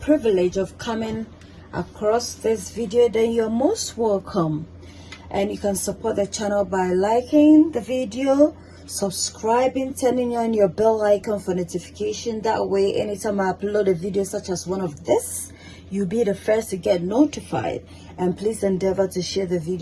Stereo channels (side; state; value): both; identical; correlation 1.00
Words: of coming across this video, then you're most welcome, and you can support the channel by liking the video, subscribing, turning on your bell icon for notification. That way anytime I upload a video such as one of this, you'll be the first to get notified. And please endeavor to share the